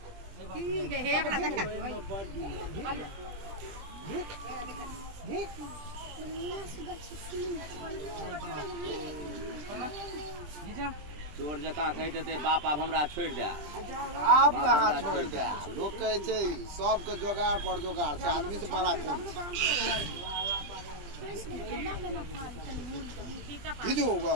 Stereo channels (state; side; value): late; left; 20 ms